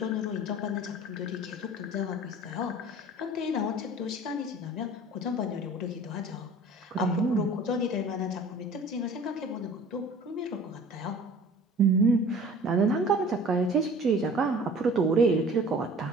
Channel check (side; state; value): both; normal; correlation 0.45